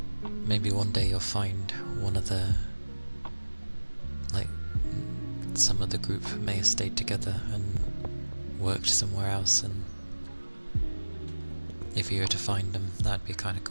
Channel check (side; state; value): both; inverted; correlation -1.00